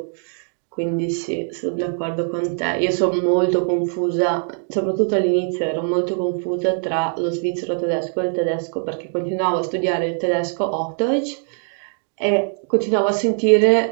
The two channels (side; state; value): left; silent; 56 dB below the other